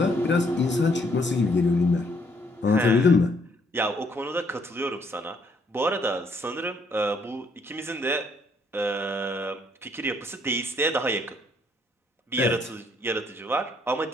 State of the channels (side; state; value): both; normal; correlation 0.68